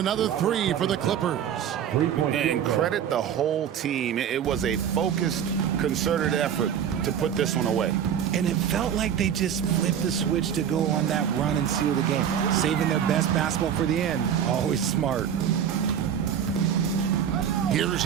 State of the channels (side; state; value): left; quieter; 8.9 dB